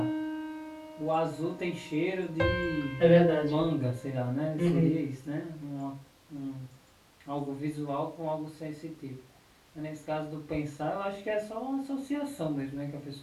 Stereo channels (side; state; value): both; identical; correlation 1.00